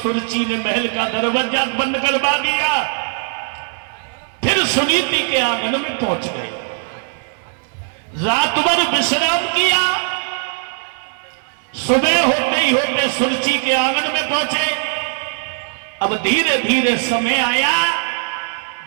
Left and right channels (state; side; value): silent; left; digital silence